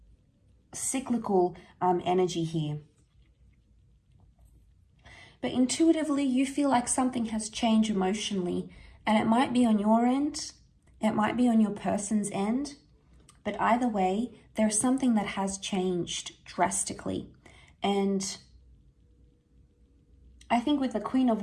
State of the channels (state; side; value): identical; both; correlation 1.00